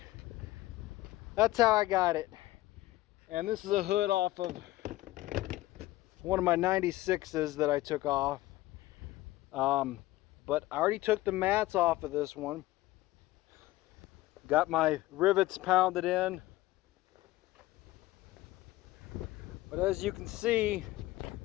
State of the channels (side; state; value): right; quieter; 17.2 dB